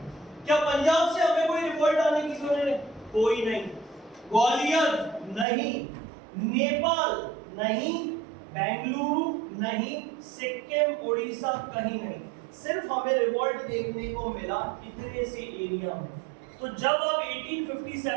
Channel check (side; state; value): left; drops out; at 5.5 s